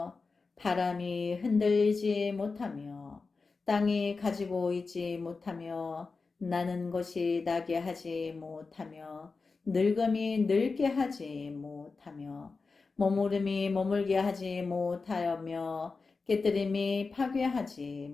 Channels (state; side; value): quieter; right; 4.3 dB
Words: 바람이 흔들리지 못하며 땅이 가지고 있지 못하며 나는 것이 나게 하지 못하며 늙음이 늙게 하지 못하며 머무름이 머물게 하지 못하며 깨뜨림이 파괴하지